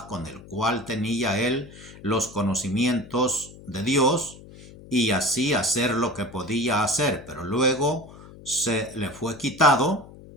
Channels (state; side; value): noise; left; hum, 19 dB below the sound